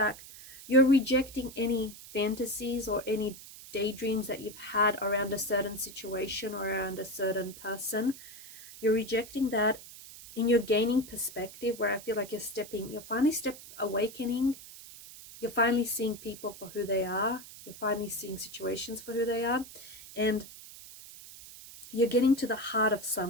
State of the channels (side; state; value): right; noise; hiss, 16 dB below the sound